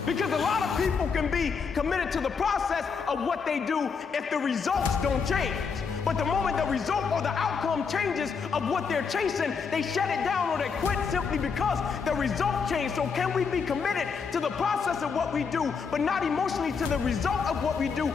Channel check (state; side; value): quieter; right; 5.7 dB